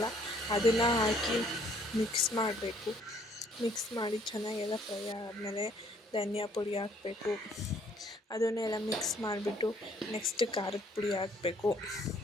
ಅದನ್ನು ಹಾಕಿ ಮಿಕ್ಸ್ ಮಾಡಬೇಕು. ಮಿಕ್ಸ್ ಮಾಡಿ ಚೆನ್ನಾಗೆಲ್ಲ ಫ್ರೈ ಆದಮೇಲೆ ಧನಿಯಾ ಪುಡಿ ಹಾಕಬೇಕು. ಅದನ್ನೆಲ್ಲ ಮಿಕ್ಸ್ ಮಾಡಿಬಿಟ್ಟು ನೆಕ್ಸ್ಟ್ ಖಾರದ ಪುಡಿ ಹಾಕಬೇಕು.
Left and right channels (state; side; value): normal; both; correlation 0.63